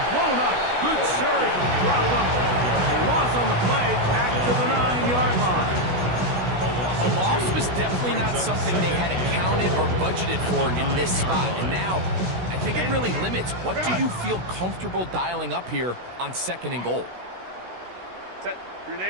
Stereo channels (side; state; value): left; late; 16 ms